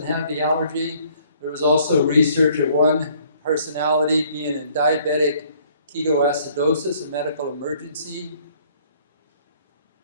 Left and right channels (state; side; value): inverted; both; correlation -0.61